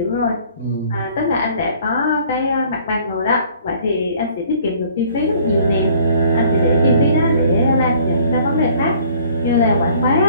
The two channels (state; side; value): inverted; both; correlation -0.56